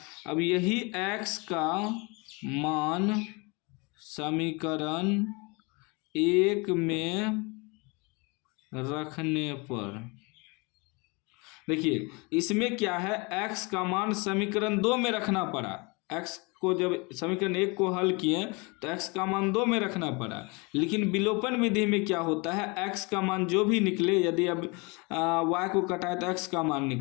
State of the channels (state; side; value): quieter; right; 28.8 dB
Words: अब यही x का मान समीकरण 1 में रखने पर, देखिए इसमें क्या है, x का मान समीकरण 2 में रखना पड़ा, x को जब समीकरण 1 को हल किए तो x का मान 2 में रखना पड़ा, लेकिन विलोपन विधि में क्या होता है, x का मान जो भी निकले, यदि अब y को कटाए तो x का मान